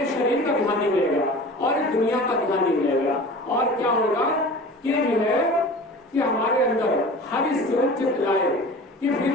शरीर का ध्यान नहीं मिलेगा और दुनिया का ध्यान नहीं मिलेगा। और क्या होगा कि जो है कि हमारे अंदर हरि चित लाए, कि फिर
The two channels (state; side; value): normal; both; correlation 0.39